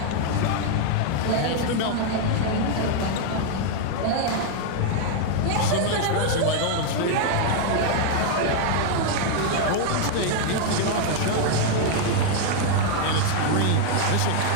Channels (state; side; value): different; both; correlation 0.00